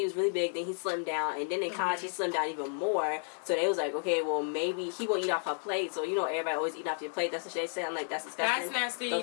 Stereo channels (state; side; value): silent; right; digital silence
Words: was really big, then he slimmed down, and then in college he slimmed down even more. So they was like, okay, well maybe he won't eat off her plate. So you know everybody always eat off your plate. That's what they say. I'm like, that's disgusting. That's nasty.